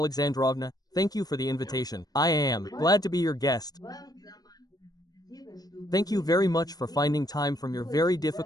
thank you for the invitation. I am glad to be your guest. Thank you very much for finding time from your very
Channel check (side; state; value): right; late; 0.19 ms